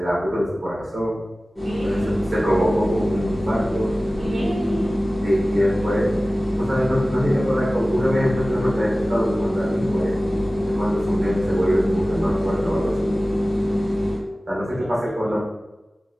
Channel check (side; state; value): both; normal; correlation 0.97